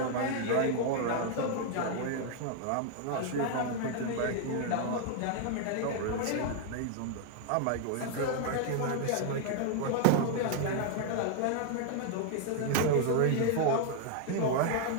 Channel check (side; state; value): both; different; correlation 0.00